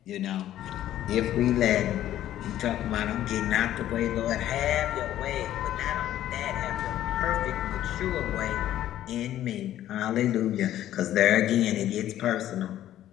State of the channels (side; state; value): right; quieter; 12.6 dB